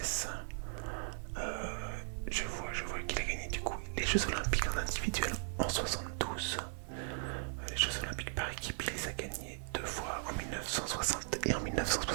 Je vois qu'il a gagné du coup les Jeux Olympiques en individuel en 72. Les Jeux Olympiques par équipe, il les a gagnés 2 fois en 1960 et en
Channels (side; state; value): left; silent; digital silence